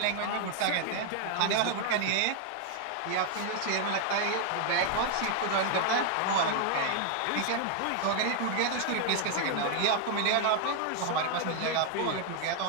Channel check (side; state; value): both; different; correlation 0.00